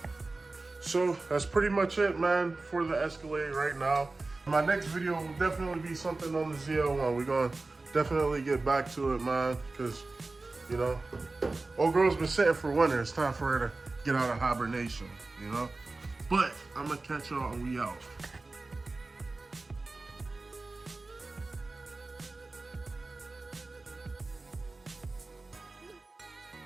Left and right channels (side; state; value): left; quieter; 3.4 dB